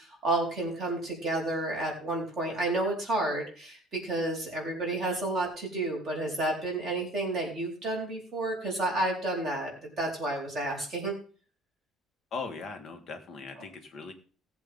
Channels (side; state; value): both; normal; correlation 0.46